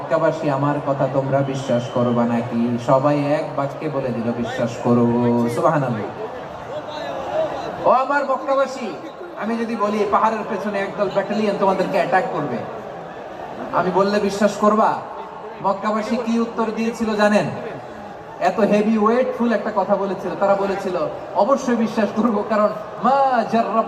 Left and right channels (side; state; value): both; identical; correlation 1.00